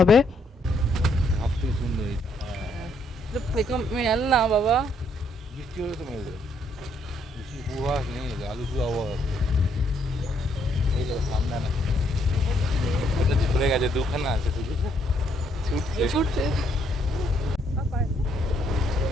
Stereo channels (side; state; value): both; normal; correlation 0.71